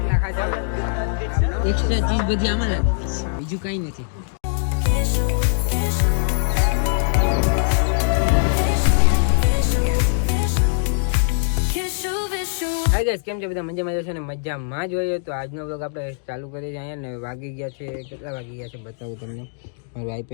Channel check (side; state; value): right; silent; digital silence